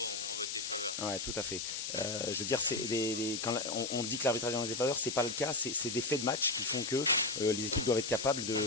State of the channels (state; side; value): noise; left; hiss, 4 dB below the sound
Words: Ouais, tout à fait. Je veux dire, quand on dit que l'arbitrage est en défaveur, c'est pas le cas. C'est des faits de match qui font que les équipes doivent être capables